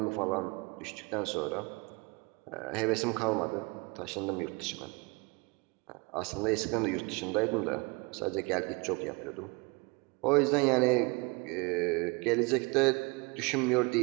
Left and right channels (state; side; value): quieter; left; 27.7 dB